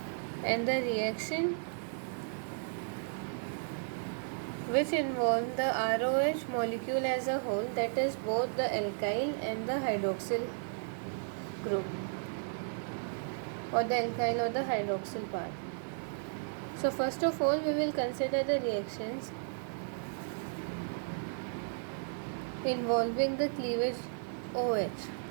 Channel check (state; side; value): silent; left; digital silence